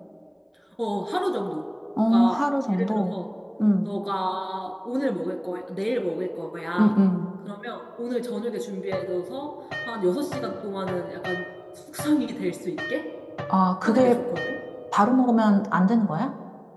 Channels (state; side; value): identical; both; correlation 1.00